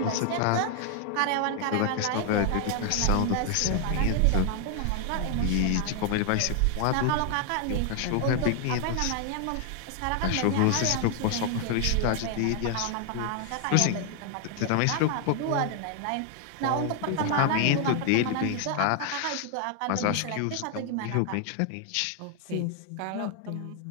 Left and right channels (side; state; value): both; different; correlation 0.00